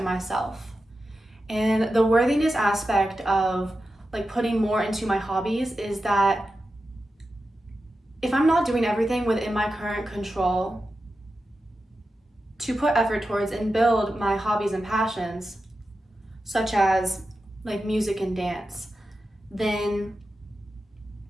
myself. And the worthiness aspect of putting more into my hobbies is that if I'm not doing everything within my current control to put effort towards and build my hobbies and passions, such as music and dance, then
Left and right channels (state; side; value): normal; both; correlation 0.91